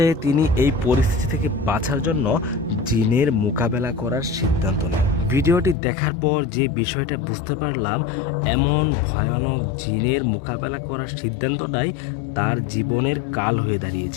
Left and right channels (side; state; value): right; drops out; at 5.8 s